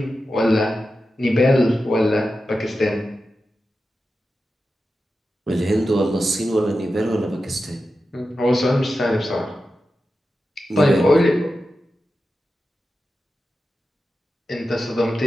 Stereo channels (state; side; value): normal; both; correlation 0.92